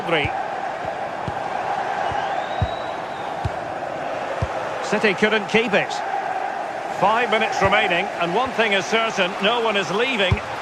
City couldn't keep it. 5 minutes remaining, and one thing is certain, no one is leaving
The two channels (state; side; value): identical; both; correlation 1.00